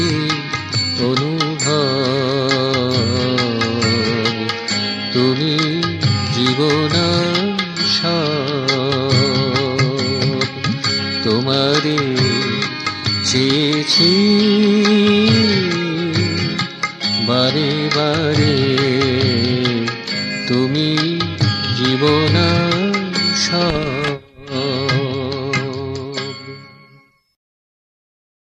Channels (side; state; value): both; identical; correlation 1.00